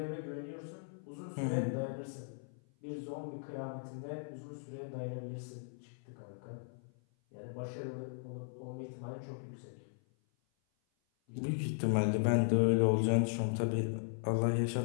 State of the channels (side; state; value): right; silent; 53 dB below the other